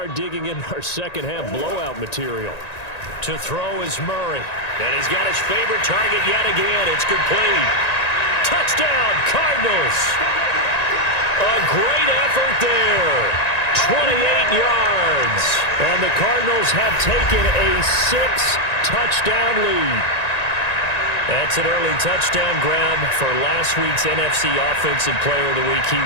digging in our second half blowout material. To throw is Murray, and he's got his favorite target yet again. It's complete. Touchdown, Cardinals. A great effort there. 28 yards. And the Cardinals have taken a 6-touchdown lead. That's an early touchdown grab for last week's NFC Offensive Player of the Week. He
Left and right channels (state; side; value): late; right; 1.9 ms